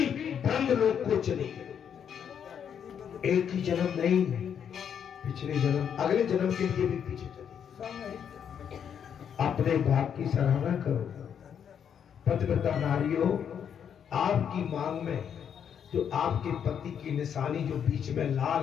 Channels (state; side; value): quieter; right; 8.2 dB